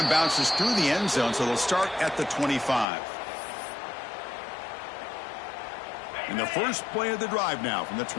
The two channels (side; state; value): right; drops out; at 2.9 s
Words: bounces through the end zone, so they'll start at the 25. And the first play of the drive now from the